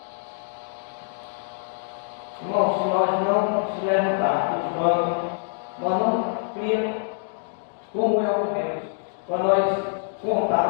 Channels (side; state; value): right; silent; digital silence